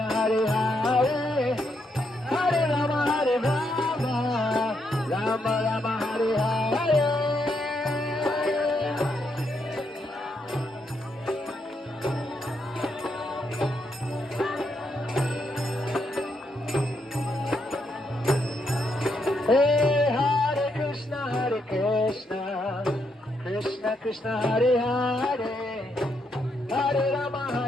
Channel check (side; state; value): both; normal; correlation 0.78